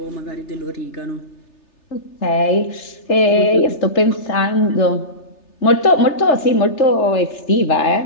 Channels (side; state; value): right; late; 3.3 ms